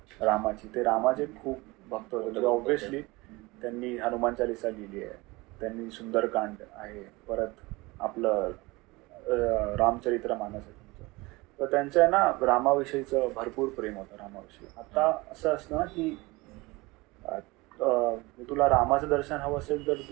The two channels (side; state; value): left; quieter; 22.8 dB